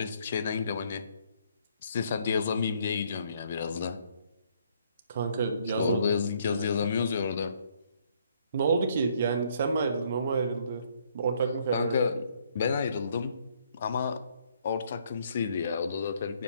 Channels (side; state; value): both; inverted; correlation -0.66